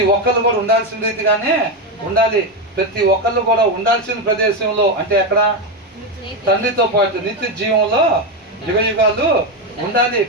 ఒక్కళ్ళు కూడా ఉండాల్సిన రీతిగానే ఉండాలి. ప్రతి ఒక్కళ్ళు కూడా ఉండాల్సిన ప్రదేశంలో, అంటే ఎక్కడ? తండ్రితో పాటు నిత్య జీవంలో యుగయుగాలు ఉండాలి.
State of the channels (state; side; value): normal; both; correlation 0.10